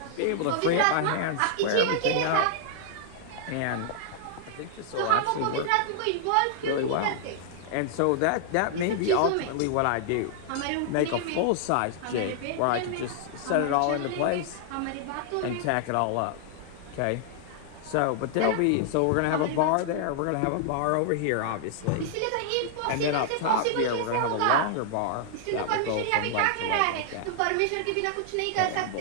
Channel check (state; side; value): different; both; correlation -0.01